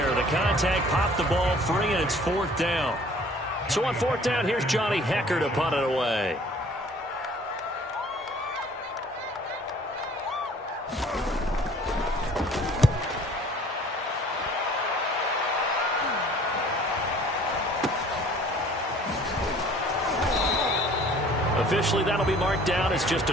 The contact popped the ball free, and it's 4th down. So on 4th down, here's Johnny Hecker to punt it away. Officially, that'll be marked down as just a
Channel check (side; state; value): both; normal; correlation 0.53